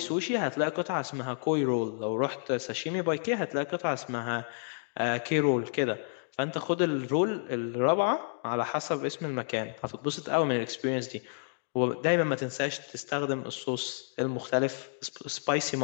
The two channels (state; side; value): silent; right; digital silence